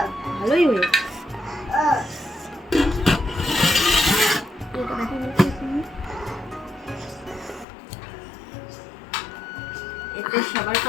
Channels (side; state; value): right; drops out; at 7.7 s